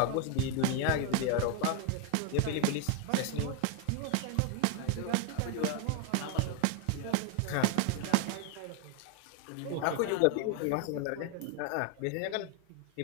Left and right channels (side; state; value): both; different; correlation 0.01